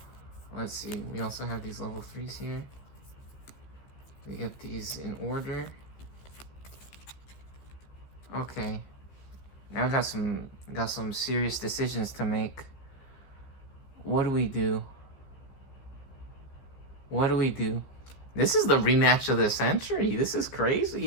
let's see. We also have these level 3s here. We get these in order. Okay. Now I got some serious decisions to make. What do we do? What do we do? This is the rematch of the century. This is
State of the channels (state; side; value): late; right; 15 ms